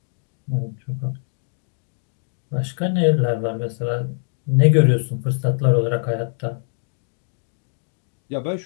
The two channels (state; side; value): silent; right; digital silence